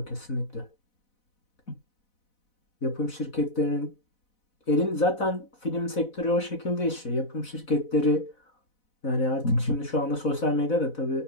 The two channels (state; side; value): late; right; 4.0 ms